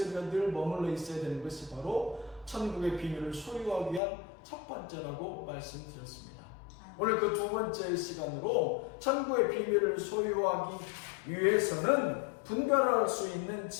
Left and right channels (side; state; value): right; drops out; at 4.0 s